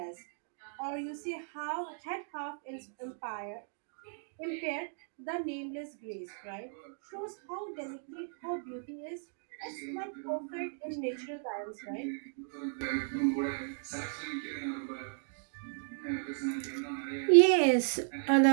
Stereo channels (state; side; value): silent; left; digital silence